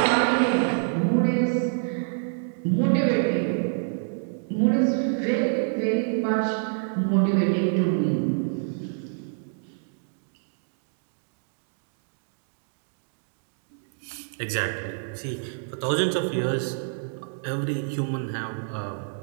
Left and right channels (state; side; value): silent; left; digital silence